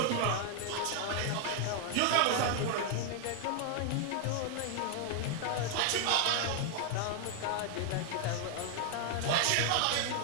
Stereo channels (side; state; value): both; different; correlation 0.00